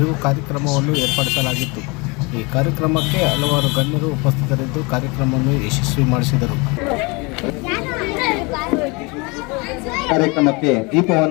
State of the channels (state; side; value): quieter; right; 27.8 dB